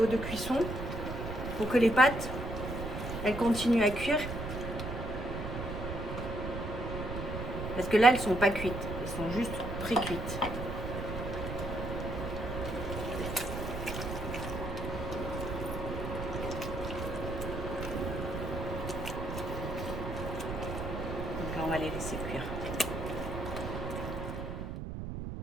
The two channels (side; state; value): right; noise; rumble, 5 dB below the sound